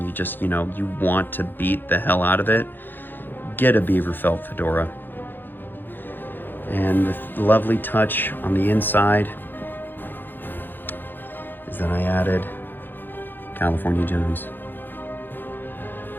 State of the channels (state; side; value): late; right; 0.094 ms